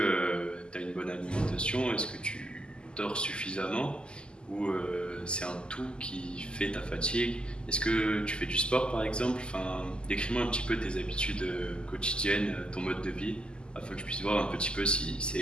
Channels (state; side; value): late; right; 0.049 ms